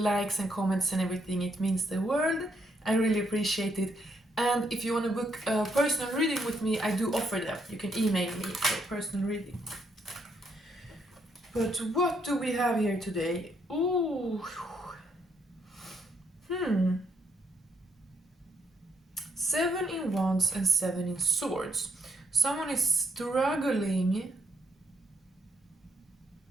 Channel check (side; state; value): both; normal; correlation 0.74